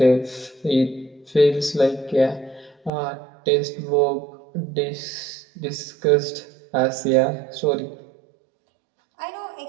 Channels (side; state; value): left; drops out; at 2.9 s